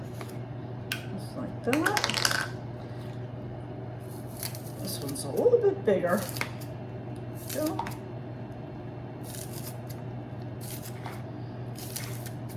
just like that. This one's a little bit bigger. Go.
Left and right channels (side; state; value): both; identical; correlation 1.00